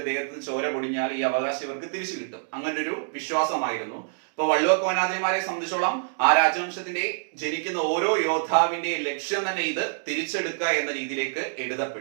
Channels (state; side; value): silent; left; digital silence